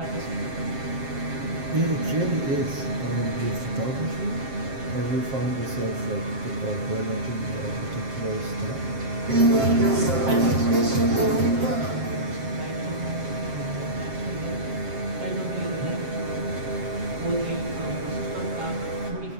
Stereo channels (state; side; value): late; left; 7.5 ms